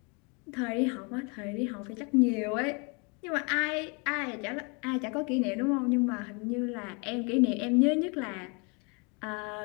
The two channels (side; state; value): right; quieter; 32.6 dB